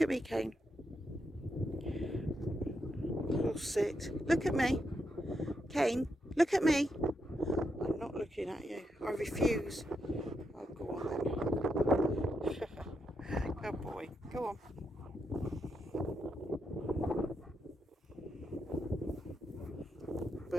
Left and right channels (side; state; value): both; normal; correlation 0.82